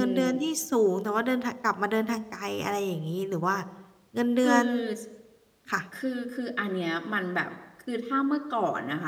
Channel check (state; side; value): identical; both; correlation 1.00